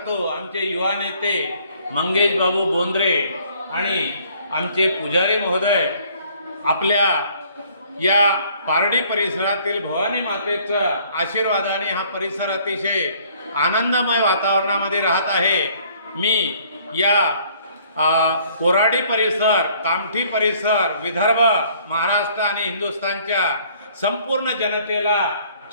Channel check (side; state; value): both; inverted; correlation -0.60